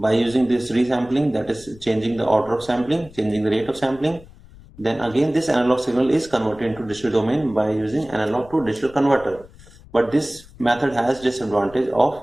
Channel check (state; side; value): noise; left; rumble, 22 dB below the sound